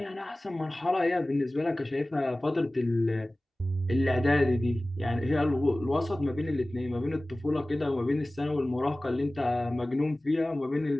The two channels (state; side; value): normal; both; correlation 0.98